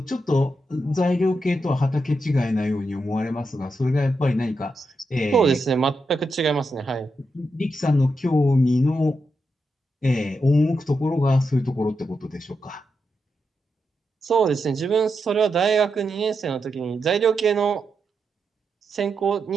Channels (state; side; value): normal; both; correlation 0.85